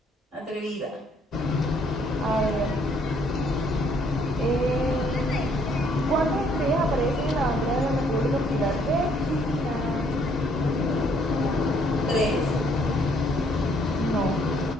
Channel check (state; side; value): normal; both; correlation 0.66